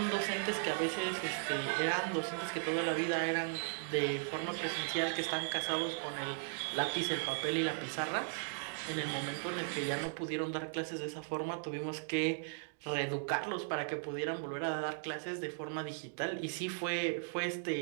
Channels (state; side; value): silent; left; digital silence